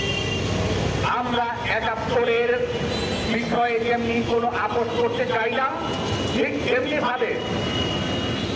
আমরা 71-এর বিষয়ে যেমনি কোনো আপোষ করতে চাই না, ঠিক তেমনি ভাবে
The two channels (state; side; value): identical; both; correlation 1.00